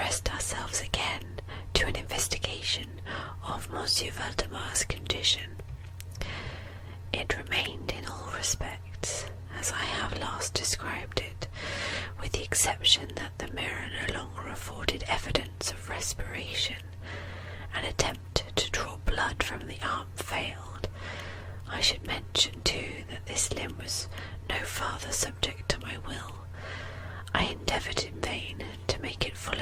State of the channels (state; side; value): identical; both; correlation 1.00